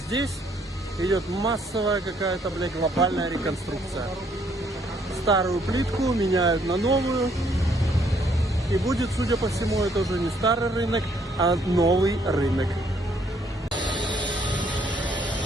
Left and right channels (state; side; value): normal; both; correlation 0.67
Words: идет массовая какая-то, блядь, глобальная реконструкция. Старую плитку меняют на новую. И будет, судя по всему, это уже не старый рынок, а новый рынок.